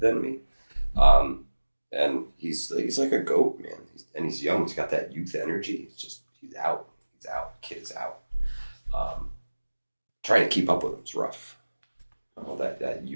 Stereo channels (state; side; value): inverted; both; correlation -1.00